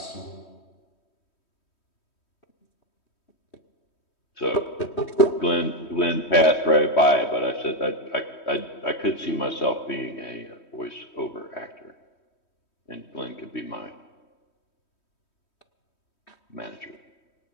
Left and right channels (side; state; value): right; late; 3.1 ms